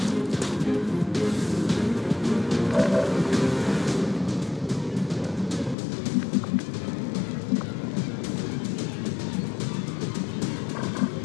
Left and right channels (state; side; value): drops out; right; at 5.8 s